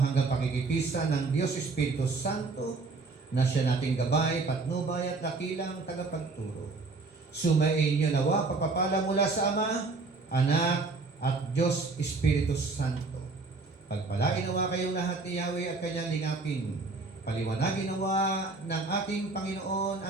pakikipisa ng Diyos Espiritu Santo na siya nating gabay, patnubay at dakilang tagapagturo. Sumain niyo nawa pagpapala mula sa Ama, Anak, at Diyos Espiritu Santo. Pagpalain nawa kayong lahat ni Yahweh at kanyang lingapin. Paliwanagin nawa ng ating Panginoon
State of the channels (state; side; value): quieter; left; 3.8 dB